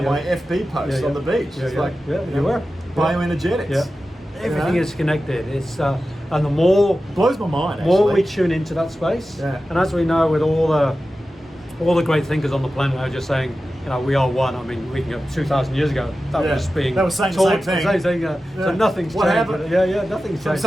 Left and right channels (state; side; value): normal; both; correlation 0.93